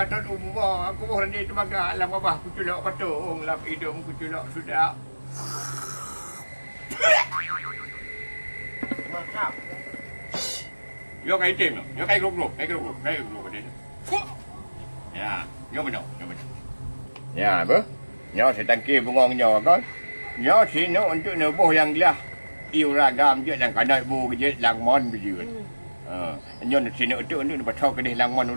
umur aku boh rantai tu maga alam babah pucuk lak patung lap hidung pucuk lak sudah mantap yo kai tim yo kai grup dia ya yo benar ya apa Nyo setangki bungong nyo kan. Nyo sini untuk nebuh yang lah. Iu ragam je yang kadai bu je langmon biji. Nyo sini untuk patau kedih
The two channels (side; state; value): both; inverted; correlation -1.00